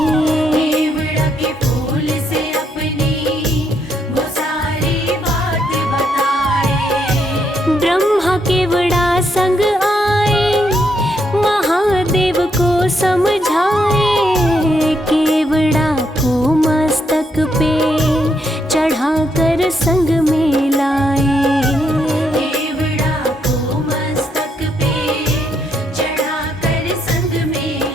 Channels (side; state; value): both; normal; correlation 0.76